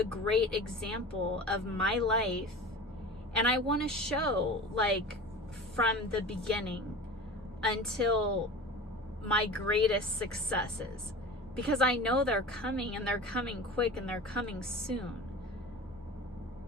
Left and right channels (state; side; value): noise; left; hum, 23 dB below the sound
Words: great example of my life. And I want to show, like, from the beginning until my greatest successes, because I know they're coming, and they're coming quick, and they're coming soon.